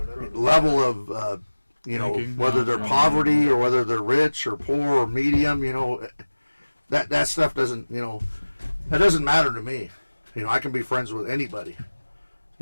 of Thinking. whether they're poverty or whether they're rich or poor or medium. That stuff doesn't that doesn't matter to me. I can be friends with anybody.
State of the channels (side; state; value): both; inverted; correlation -1.00